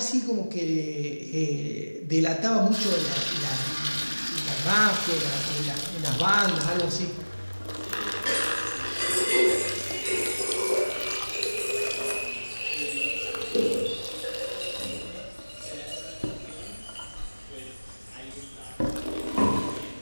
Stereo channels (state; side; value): inverted; both; correlation -1.00